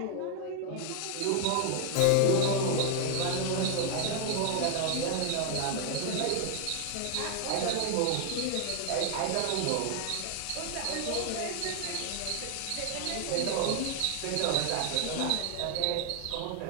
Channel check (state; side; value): different; both; correlation 0.00